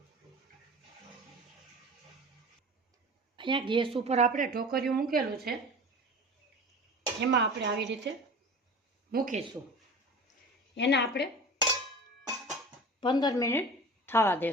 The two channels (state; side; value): normal; both; correlation 0.37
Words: અહીંયા ગેસ ઉપર આપણે ઢોકળિયું મૂકેલું છે. એમાં આપણે આવી રીતે મૂકીશું. એને આપણે 15 મિનિટ થવા